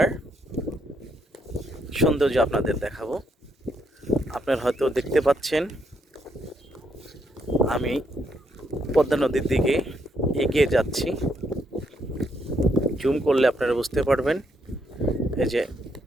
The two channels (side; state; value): both; normal; correlation 0.75